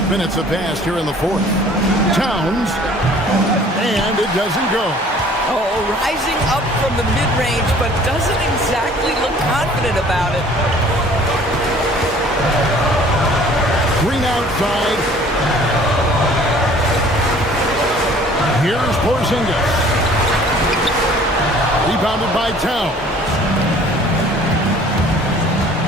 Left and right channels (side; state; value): both; normal; correlation 0.52